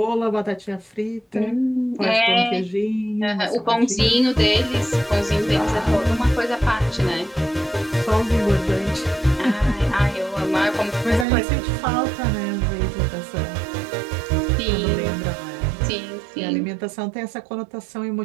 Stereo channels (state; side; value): drops out; left; at 11.2 s